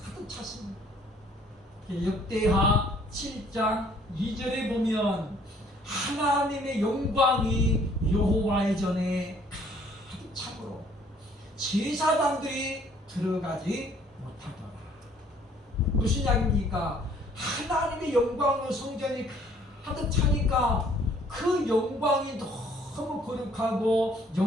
가득 찼습니다. 역대하 7장 2절에 보면 하나님의 영광이 여호와의 전에 참으로 제사장들이 들어가지 못하더라. 무슨 이야기입니까? 하나님의 영광으로 성전이 가득 차니까 그 영광이 너무 거룩하고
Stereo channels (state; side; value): normal; both; correlation 0.60